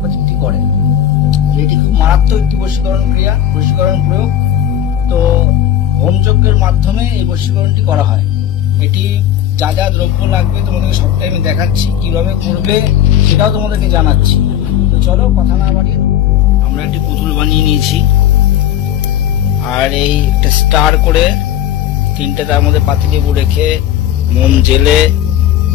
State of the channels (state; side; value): quieter; right; 10.8 dB